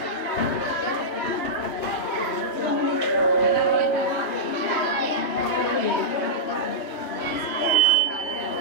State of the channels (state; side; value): late; right; 3.2 ms